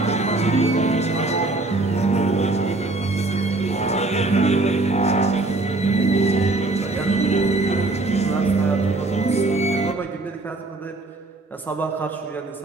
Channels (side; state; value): left; quieter; 3.0 dB